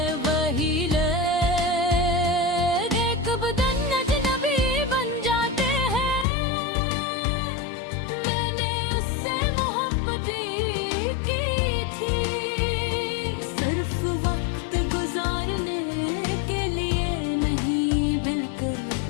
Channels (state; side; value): drops out; right; at 6.2 s